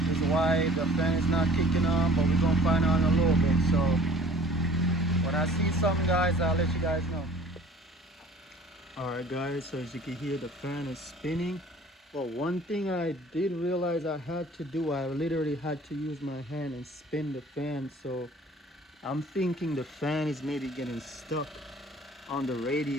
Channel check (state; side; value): normal; both; correlation 0.50